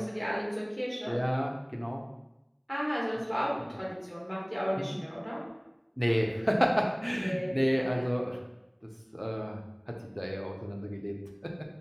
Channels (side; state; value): both; identical; correlation 1.00